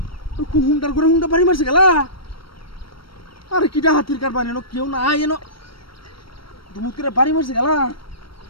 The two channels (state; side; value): late; right; 0.74 ms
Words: হুন্ডার করে হুন্ডা বাড়ি মারছে গেলা আরে কিটা হাতির কারবার এনো কেউ না এনো দুমুত করে বাড়ি মারছে গেলা